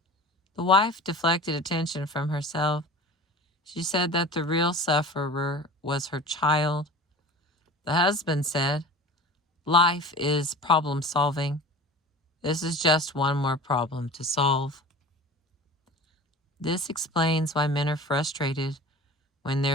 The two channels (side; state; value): both; normal; correlation 0.38